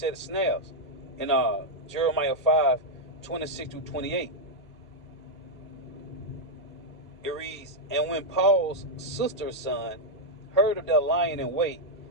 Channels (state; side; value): normal; both; correlation -0.02